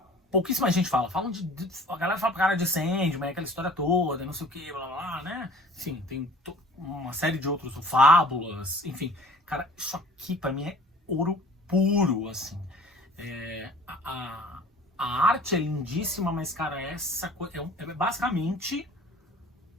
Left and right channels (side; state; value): both; normal; correlation 0.48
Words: pouquíssima gente fala. A galera fala pra cara de Sandman, aquela história toda, não sei o que, blá blá, né? Enfim, tem uma série de outros, Fábulas, enfim. Cara, isso aqui pra mim é ouro puro, assim. A arte é lindíssima, mas, cara, essa coisa é basicamente